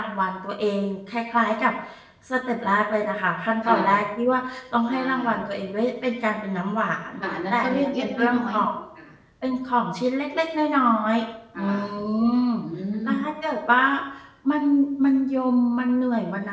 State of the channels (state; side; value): identical; both; correlation 1.00